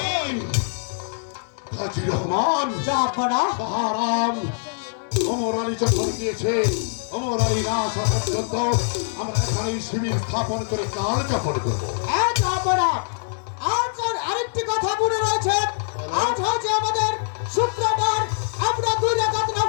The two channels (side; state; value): right; silent; digital silence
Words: হাজী রহমান জাহাপনা বাহারাম ওমর আলী যখন দিয়েছে ওমর আলী না আসা পর্যন্ত আমরা এখানে শিবির স্থাপন করে কাল যাপন করবো। জাহাপনা আজ আর আরেকটি কথা মনে রয়েছে। আজ হচ্ছে আমাদের শুক্রবার, আমরা 2 রাকাত